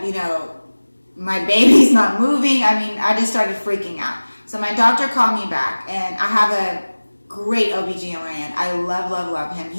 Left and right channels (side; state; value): both; inverted; correlation -1.00